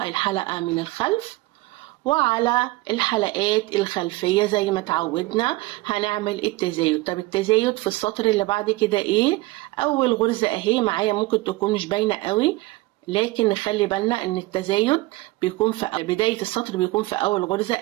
الحلقة من الخلف، وعلى الحلقات الخلفية زي ما اتعودنا هنعمل التزايد. طب التزايد في السطر اللي بعد كده ايه؟ اول غرزة اهي معايا ممكن تكون مش باينة قوي، لكن نخلي بالنا ان التزايد بيكون في بداية السطر، بيكون في اول غرزة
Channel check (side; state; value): left; quieter; 20.5 dB